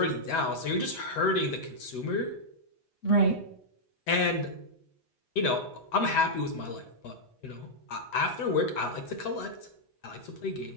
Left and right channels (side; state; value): right; late; 8.2 ms